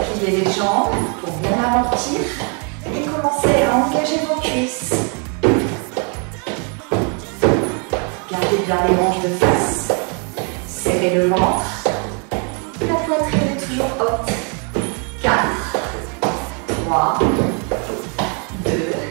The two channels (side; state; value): left; quieter; 37.9 dB